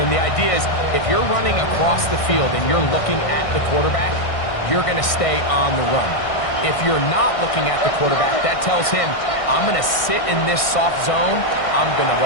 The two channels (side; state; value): right; late; 1.6 ms